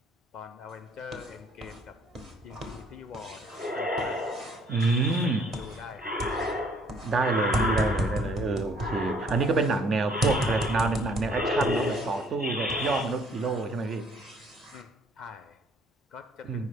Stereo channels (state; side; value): normal; both; correlation 0.61